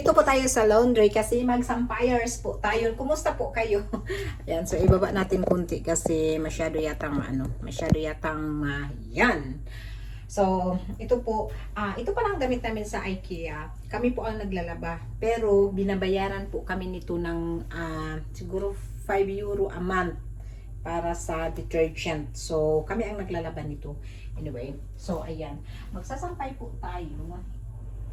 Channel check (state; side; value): identical; both; correlation 1.00